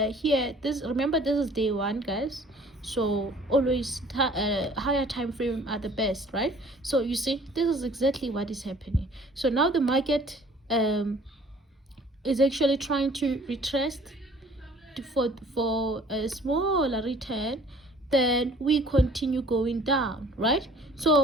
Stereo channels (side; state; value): both; normal; correlation 0.53